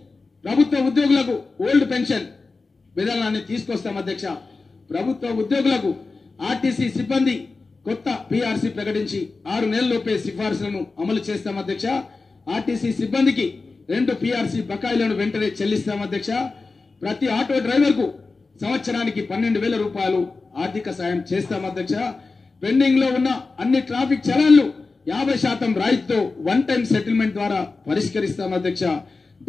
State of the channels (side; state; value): right; quieter; 3.9 dB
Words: ప్రభుత్వ ఉద్యోగులకు ఓల్డ్ పెన్షన్ విధానాన్ని తీసుకొస్తాం అధ్యక్ష. ప్రభుత్వ ఉద్యోగులకు ఆర్టీసీ సిబ్బంది కొత్త పీఆర్సీ ప్రకటించి 6 నెలల్లోపే సిఫార్సులను అమలు చేస్తాం అధ్యక్ష. ఆర్టీసీ సిబ్బందికి 2 పీఆర్సీ బకాయిలను వెంటనే చెల్లిస్తాం అధ్యక్ష. ప్రతి ఆటో డ్రైవర్ కు సంవత్సరానికి 12,000 రూపాయలు ఆర్థిక సాయం చేస్తాం అధ్యక్ష. పెండింగ్ లో ఉన్న అన్ని ట్రాఫిక్ చలాన్లు 50% రాయితీతో వన్ టైం సెటిల్మెంట్ ద్వారా పరిష్కరిస్తాం అధ్యక్ష.